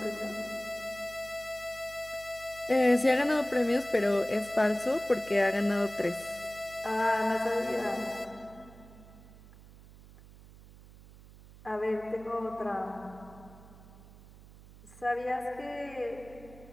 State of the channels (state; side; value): noise; right; hum, 20 dB below the sound